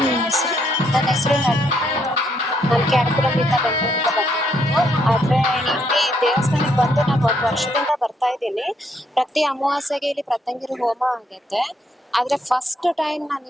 ನಿಮ್ಮ ಹೆಸರು? ನನ್ನ ಹೆಸರು ನಳಿನಿ ಅಂತ. ನಾನು ಕ್ಯಾರಕುಲಂನಿಂದ ಬೆಂಗಳೂರಿಂದ ಬಂದಿರೋದು. ಆದ್ರೆ ಇಲ್ಲಿ ದೇವಸ್ಥಾನಕ್ಕೆ ಬಂದು ನಾನು 1 ವರ್ಷದಿಂದ ಬರ್ತಾ ಇದ್ದೀನಿ. ಪ್ರತಿ ಅಮಾವಾಸ್ಯೆಗೆ ಇಲ್ಲಿ ಪ್ರತ್ಯಂಗಿರಿ ಹೋಮ ಆಗುತ್ತೆ. ಆದ್ರೆ ಫಸ್ಟ್ ಟೈಮ್ ನಾನು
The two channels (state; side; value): normal; both; correlation 0.73